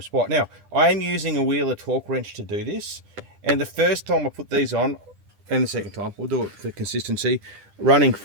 spot. Now, I am using a Wheeler torque wrench to do this, and the first time I put these on, and the second time, we'll do it for consistency, running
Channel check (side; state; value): left; late; 9.9 ms